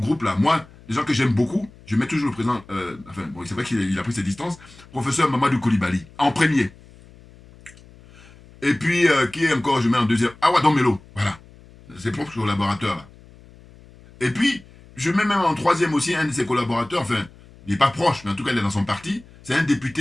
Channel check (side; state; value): left; noise; hum, 23 dB below the sound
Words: là, moi, les gens que j'aime beaucoup, je mets toujours le président, enfin, bon, c'est vrai qu'il a pris ses distances, professeur Mamadou Coulibaly, en premier. Et puis, qui est encore, je mets en deuxième, Awadon Melo, voilà, ses propres collaborateurs, là. Et puis, je mets même en troisième aussi un de ses collaborateurs, enfin, il n'est pas proche, mais en tout cas, il est dans son parti, c'est un